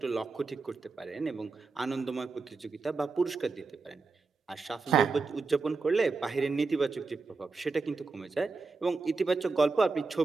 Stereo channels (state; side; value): quieter; left; 4.1 dB